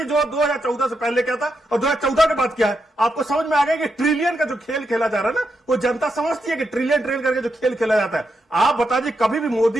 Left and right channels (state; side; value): normal; both; correlation 0.83